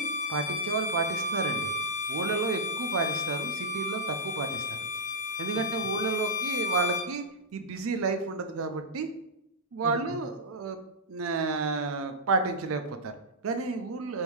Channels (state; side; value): normal; both; correlation -0.10